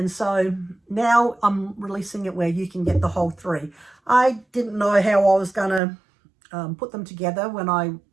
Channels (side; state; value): left; drops out; at 5.8 s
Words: so now I'm releasing it where you can get the whole 3. I didn't know how I was going to put them together when I